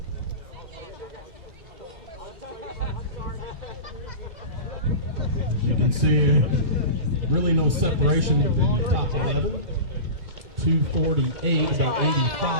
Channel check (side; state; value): left; late; 2.3 ms